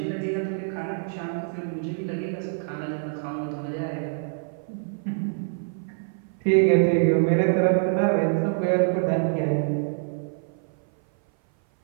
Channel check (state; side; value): silent; left; 57 dB below the other